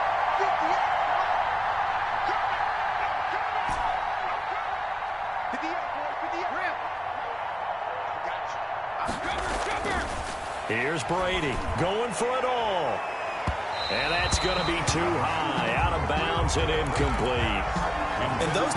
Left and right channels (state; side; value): identical; both; correlation 1.00